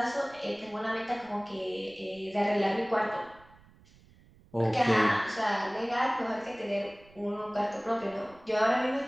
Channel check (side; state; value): right; noise; rumble, 26 dB below the sound